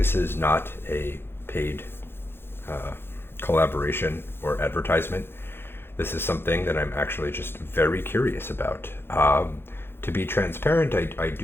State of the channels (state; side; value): late; right; 0.11 ms